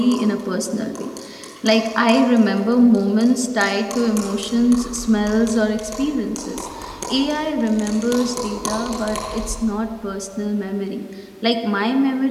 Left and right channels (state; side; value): identical; both; correlation 1.00